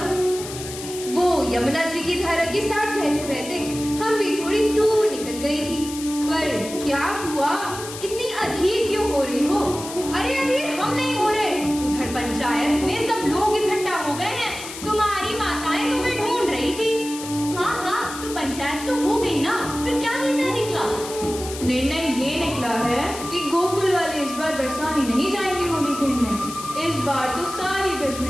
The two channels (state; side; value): noise; left; hiss, 11 dB below the sound